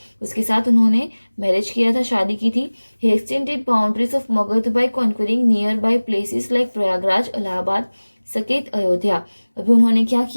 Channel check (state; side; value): inverted; both; correlation -1.00